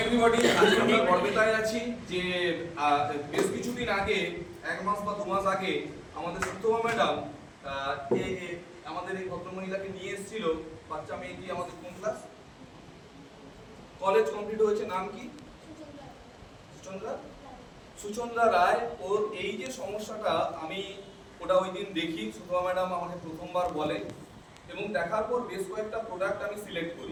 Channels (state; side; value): identical; both; correlation 1.00